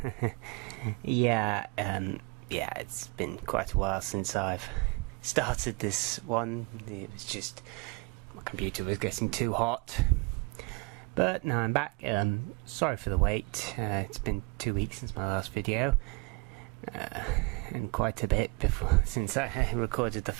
Yeah, it's been quite a while since I've started this one. It was just my computer was getting too hot. But now I'm back. Sorry for the wait. It's been 2 weeks since my last video. And quite a bit before since I recorded the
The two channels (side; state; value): left; quieter; 28.6 dB